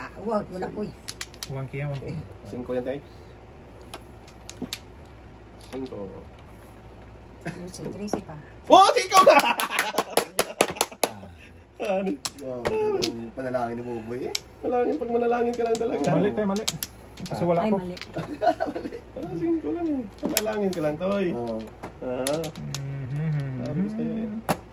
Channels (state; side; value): identical; both; correlation 1.00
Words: Wag, wala po eh. 1K yan, 1K. 5 yan, tay. 5. Tracy pa. Oh, ikaw na! Ano? Yung panalangin ni Boboy eh. Malangin, pag manalangin ka lang talaga. Mali tayo, mali. Kasi wala Ay, ko. mali. 5 lang eh. Manalangin ka lang, toy. Oo. Sabi ko sa'yo eh.